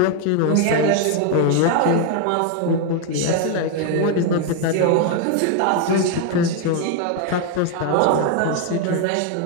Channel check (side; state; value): both; different; correlation 0.00